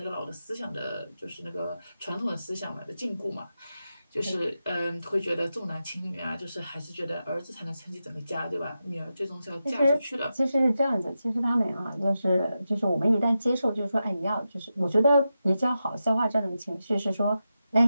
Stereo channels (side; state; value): both; inverted; correlation -0.90